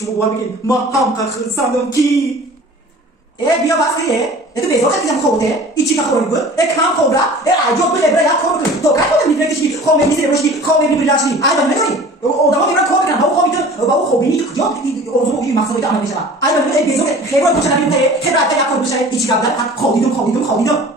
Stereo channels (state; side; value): normal; both; correlation 0.44